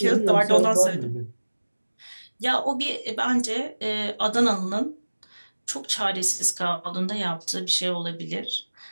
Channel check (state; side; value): inverted; both; correlation -1.00